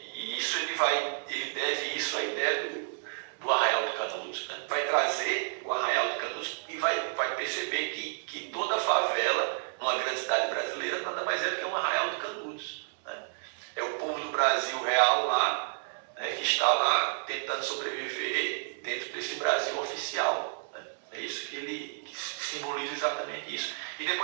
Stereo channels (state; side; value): silent; left; digital silence